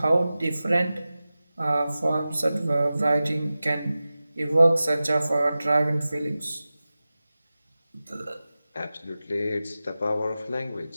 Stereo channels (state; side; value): inverted; both; correlation -0.95